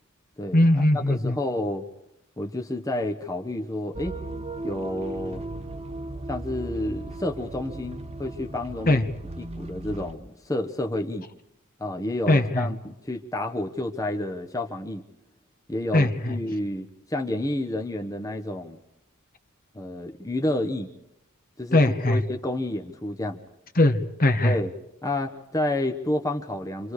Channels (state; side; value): normal; both; correlation 0.76